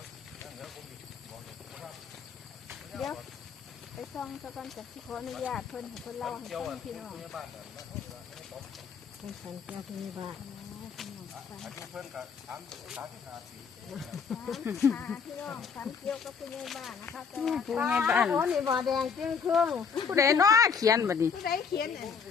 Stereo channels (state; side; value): quieter; right; 6.2 dB